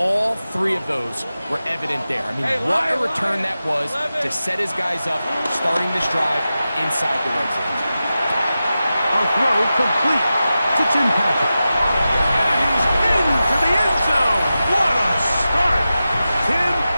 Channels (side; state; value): both; inverted; correlation -0.93